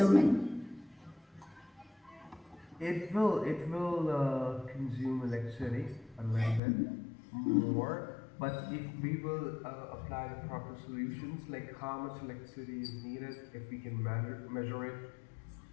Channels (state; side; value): drops out; right; at 6.6 s